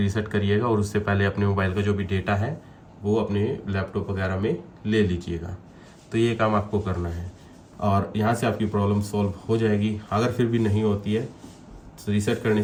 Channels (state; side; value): identical; both; correlation 1.00